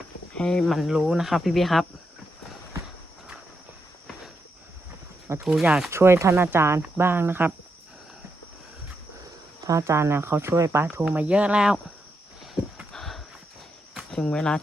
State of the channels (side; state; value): both; normal; correlation 0.83